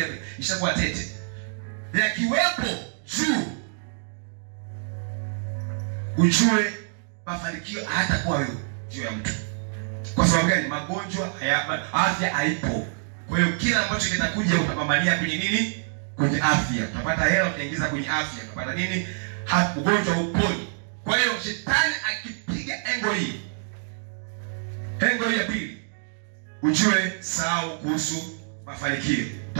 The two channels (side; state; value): left; silent; digital silence